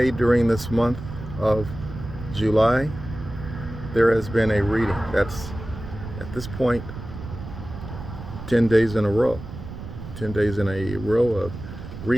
during this month of July, there has been a reading. That's, at this point, 10 days in a row. 10 days in a row of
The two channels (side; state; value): right; noise; rumble, 11 dB below the sound